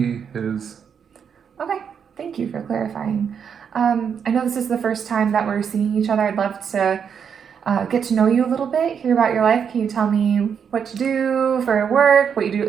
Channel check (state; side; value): quieter; left; 7.2 dB